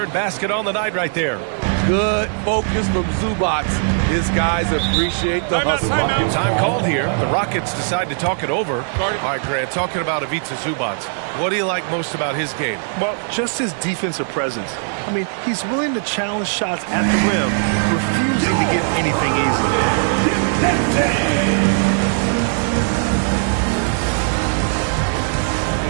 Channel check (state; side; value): silent; left; 65 dB below the other